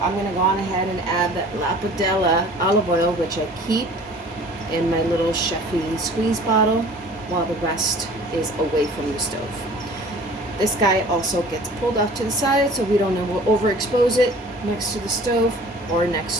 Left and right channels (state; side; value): normal; both; correlation 0.47